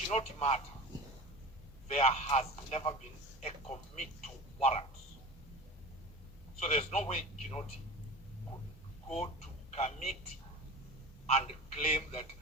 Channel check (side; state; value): both; normal; correlation 0.34